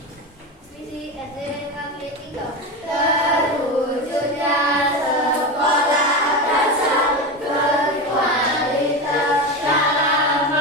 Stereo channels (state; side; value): normal; both; correlation 0.20